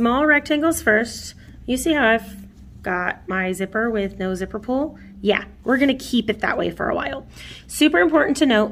rectangles first, you see how I've got my zipper with no zipper pull? Yeah, we're going to keep it that way for a while. Super important to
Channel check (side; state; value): both; identical; correlation 1.00